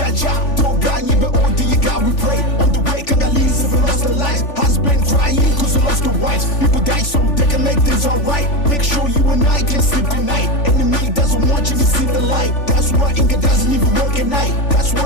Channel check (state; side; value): late; right; 3.4 ms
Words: don't ganye, but all do you got, we pray. On the way, Congolese have lost their lives, has been crying cause they lost their wives. People die so they can make things alright. Make sure you and I can sleep tonight. Enemy doesn't want you to see the light. That's why Inga doesn't even work at night. That's